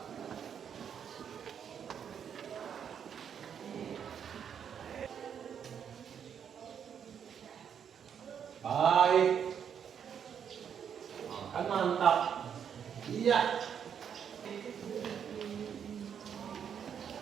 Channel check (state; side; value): quieter; left; 8.0 dB